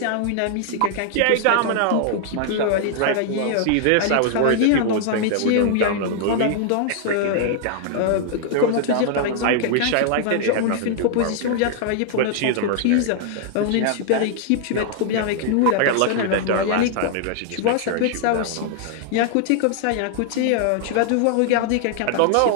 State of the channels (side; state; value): both; different; correlation 0.00